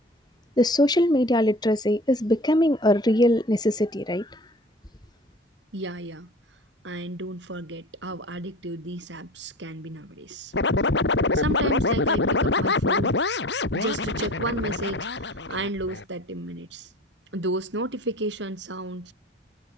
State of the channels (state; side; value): normal; both; correlation 0.40